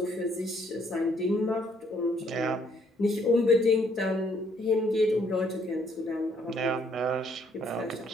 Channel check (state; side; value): normal; both; correlation 0.68